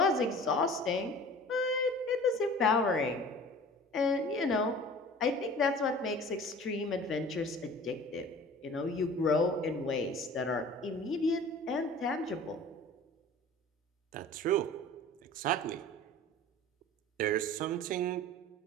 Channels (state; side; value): normal; both; correlation 0.43